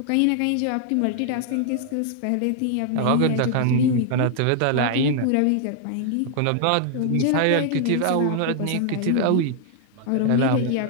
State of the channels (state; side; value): different; both; correlation 0.00